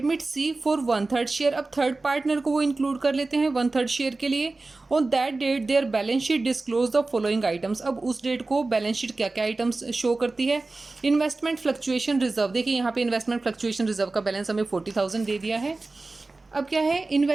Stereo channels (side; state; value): left; quieter; 3.4 dB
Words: C for 1/3 share. अब थर्ड पार्टनर को वो इंक्लूड कर लेते हैं 1/3 शेयर के लिए। On that date their balance sheet disclose the following items. अब उस डेट को बैलेंस शीट क्या क्या आइटम्स शो करती है। इन्वेस्टमेंट फ्लक्चुएशन रिजर्व, देखिए यहाँ पे इन्वेस्टमेंट फ्लक्चुएशन रिजर्व का बैलेंस हमें 40,000 दे दिया है। अब क्या है,